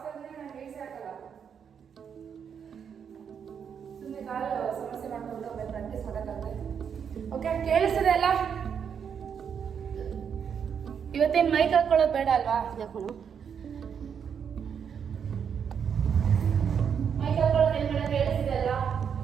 ತಂದ್ರೆ ನಾನು ಬೇಯಿಸಿ ಹಾಕಲ್ಲ, ಸುಮ್ಮನೆ ಕಾಲು ಸಮಸ್ಯೆ ಮಾಡ್ಕೊಂಡು ಪ್ರಾಕ್ಟೀಸ್ ಮಾಡೋಕ್ಕಾಗುತ್ತೆ. ಓಕೆ, ಕೇಳಿಸ್ತದೆ ಅಲ್ಲ? ಇವತ್ತೇನು ಮೈಕ್ ಹಾಕೊಳ್ಳೋದು ಬೇಡ ಅಲ್ವಾ? ಯಾಕೋಣ ಮೈಕ್ ಹಾಕೊಳ್ಳೋದು ಏನು ಬೇಡ, ಕೇಳಿಸ್ತಿದೆ ಅಲ್ಲ?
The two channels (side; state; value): left; quieter; 7.4 dB